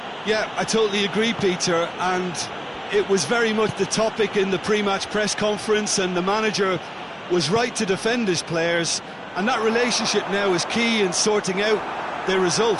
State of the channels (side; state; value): both; identical; correlation 1.00